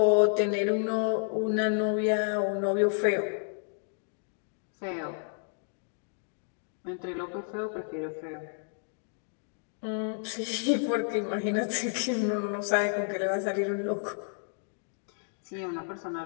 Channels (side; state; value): right; silent; digital silence